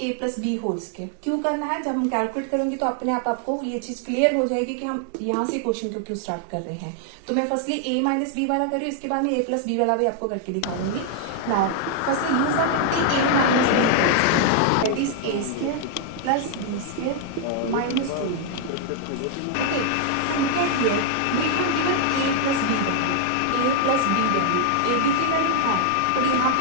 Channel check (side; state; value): both; different; correlation 0.00